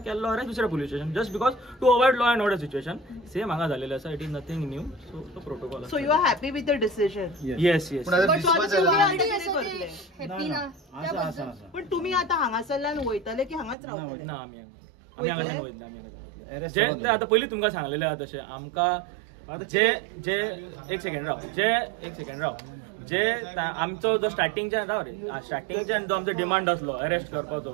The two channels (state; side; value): drops out; left; at 13.8 s